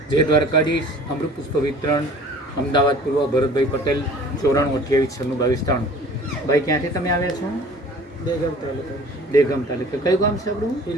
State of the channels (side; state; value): both; normal; correlation 0.47